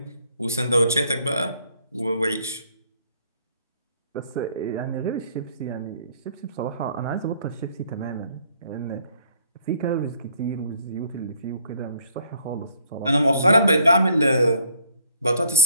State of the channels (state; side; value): inverted; both; correlation -0.62